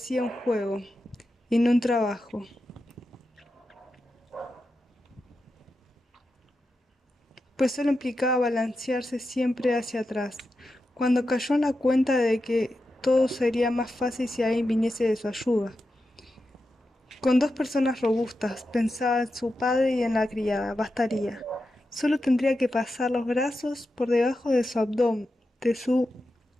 un juego y no un trabajo, pues solo implicaba balancearse siempre hacia atrás. Cuando cayó en la cuenta de que todo sería más fácil si alguien viniese de su ayuda. Con 2 personas robustas, pensaba en su padre y en la criada, bastaría. Solo tendría que pasar los brazos por debajo de su abdomen, de su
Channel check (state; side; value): normal; both; correlation 0.89